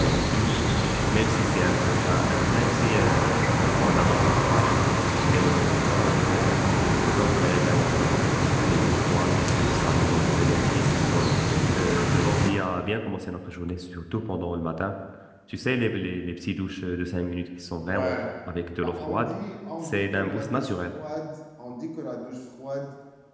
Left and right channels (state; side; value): identical; both; correlation 1.00